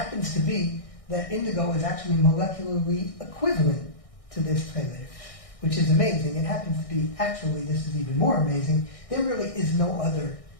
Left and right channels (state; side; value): late; right; 1.6 ms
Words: to be that indigo is actually molecularly equivalent to this tchelet, which is amazing. It happens to be, actually, this is even more amazing, there really is no other